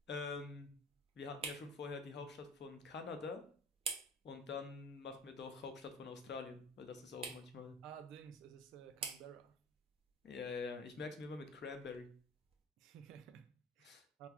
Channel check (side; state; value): both; normal; correlation 0.39